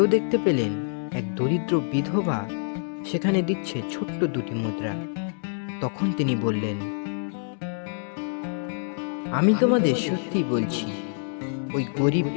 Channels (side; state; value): right; silent; digital silence